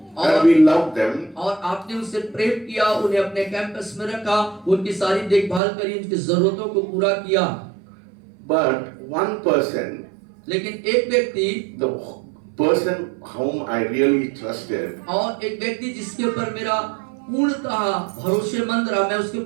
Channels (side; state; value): left; drops out; at 5.6 s